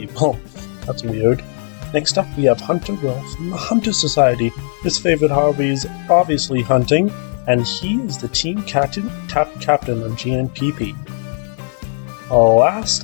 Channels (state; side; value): silent; right; 59 dB below the other